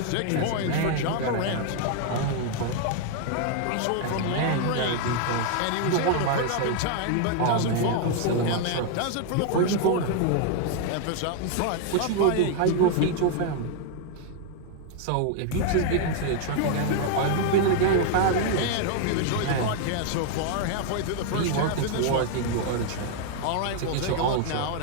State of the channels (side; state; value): both; different; correlation 0.00